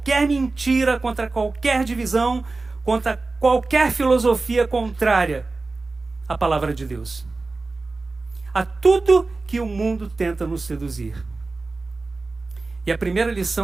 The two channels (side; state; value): left; quieter; 3.6 dB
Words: mentira, contra qualquer divisão, contra qualquer filosofia contrária à palavra de Deus, a tudo que o mundo tenta nos seduzir. E a primeira